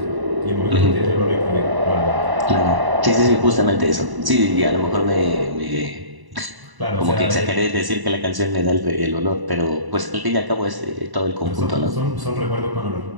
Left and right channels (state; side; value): late; left; 1.0 ms